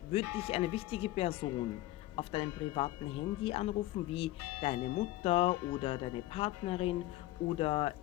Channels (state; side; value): quieter; right; 16.8 dB